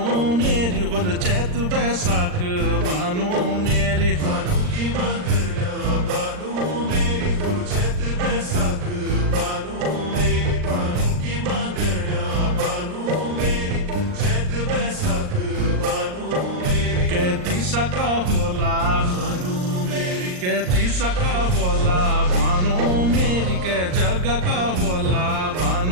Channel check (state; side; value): late; left; 39 ms